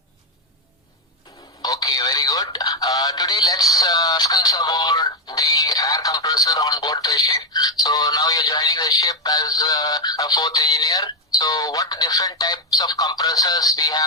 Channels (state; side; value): normal; both; correlation 0.05